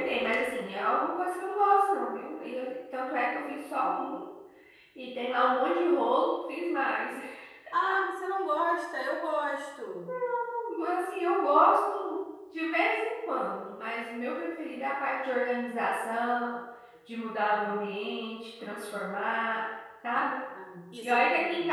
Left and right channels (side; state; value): both; identical; correlation 1.00